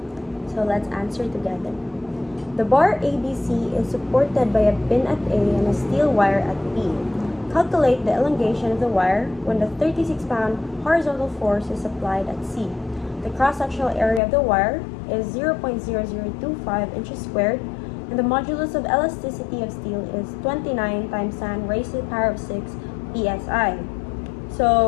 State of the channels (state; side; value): drops out; right; at 14.2 s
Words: So let's answer together. The bar ABC is supported by a pin at A and a steel wire at B. Calculate the elongation of the wire when the 36-pound horizontal force is applied at C. The cross-sectional area of the wire is 0.0025 inches squared, and the modulus of elasticity of steel is 29 times 10 raised to the power of 6 psi.